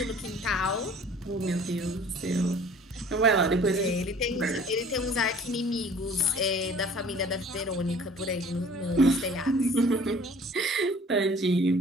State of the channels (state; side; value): normal; both; correlation 0.51